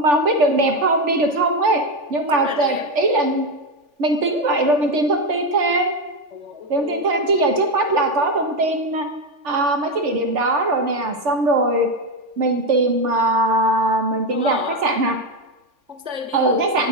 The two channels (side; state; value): left; late; 3.5 ms